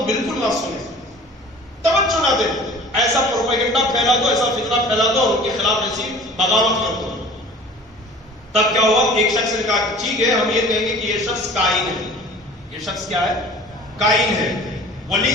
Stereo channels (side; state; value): both; normal; correlation 0.45